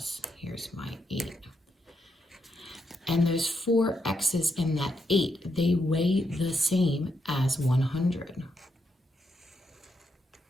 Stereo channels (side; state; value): both; normal; correlation 0.81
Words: here's my 8. And those 4 x's and that 8, they weigh the same as 100.